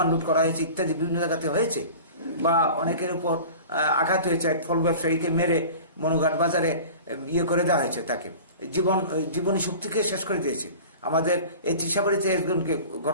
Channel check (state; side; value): inverted; both; correlation -0.39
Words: লুট করা হয়েছে ইত্যাদি বিভিন্ন জায়গাতে হয়েছে। বা অনেকের উপর আঘাত হয়েছে, এক ফল ব্যবসায়ীকে মেরে মনুঘাট বাজারে ইয়ে করে দেওয়া হয়েছে, তাকে জীবনী শক্তিকে শেষ করে দিয়েছে। আমাদের এই ত্রিশাবাড়িতে একজনকে